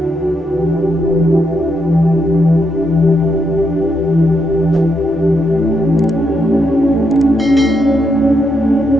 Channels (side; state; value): both; normal; correlation 0.80